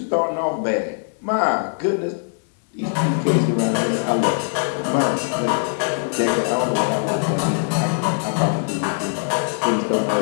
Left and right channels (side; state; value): right; silent; digital silence